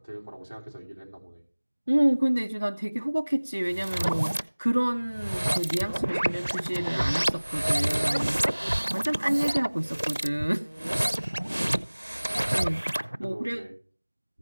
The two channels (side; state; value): both; inverted; correlation -1.00